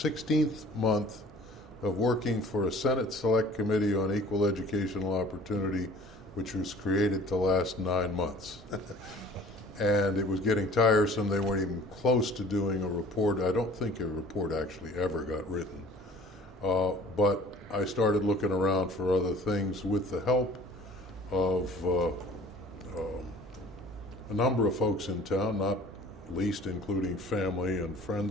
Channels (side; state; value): both; normal; correlation 0.49